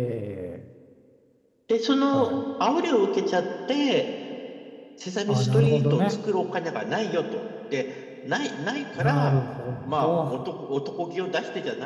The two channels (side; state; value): both; identical; correlation 1.00